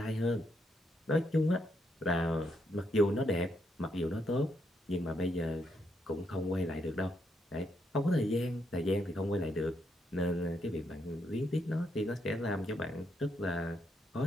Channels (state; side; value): normal; both; correlation 0.77